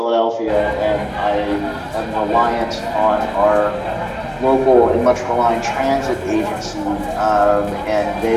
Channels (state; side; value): identical; both; correlation 1.00